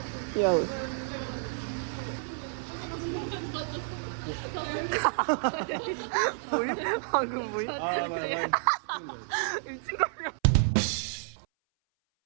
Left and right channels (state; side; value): silent; left; 58 dB below the other